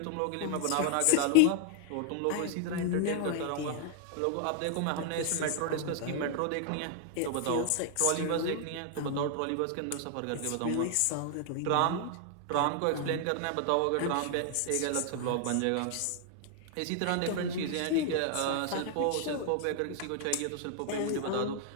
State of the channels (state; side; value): different; both; correlation 0.00